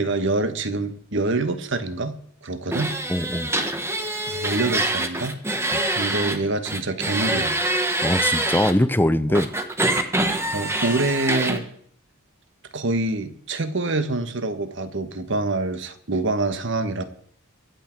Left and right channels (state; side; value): normal; both; correlation 0.27